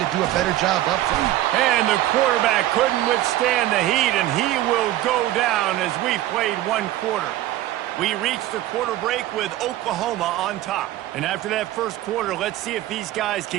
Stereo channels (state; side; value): quieter; left; 14.5 dB